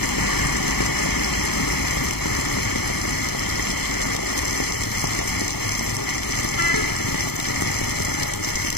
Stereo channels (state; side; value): late; right; 0.97 ms